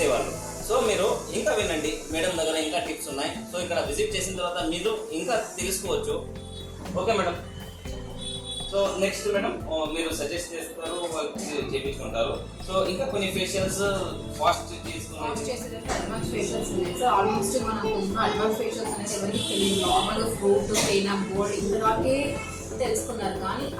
సో మీరు ఇంకా వినండి, మేడం దగ్గర ఇంకా టిప్స్ ఉన్నాయి. సో ఇక్కడ విజిట్ చేసిన తర్వాత మీరు ఇంకా తెలుసుకోవచ్చు. Okay madam. So next madam మీరు సజెస్ట్ చేస్తారు, చేపించుకుంటారు. సో ఇంకా కొన్ని ఫేషియల్స్ ఫాస్ట్ అడ్వాన్స్ ఫేషియల్స్ ఉన్నాయి. సో ఆల్మోస్ట్ మనకు అడ్వాన్స్ ఫేషియల్స్ అనేది ఎవరికి తెలియదు. నార్మల్గా ఫ్రూట్ క్లీనప్ బోర్డ్ ఇంతవరకే తెలుసుకున్నారు, కానీ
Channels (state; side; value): identical; both; correlation 1.00